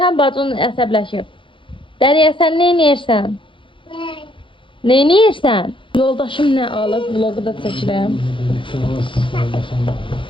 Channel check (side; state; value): right; late; 0.25 ms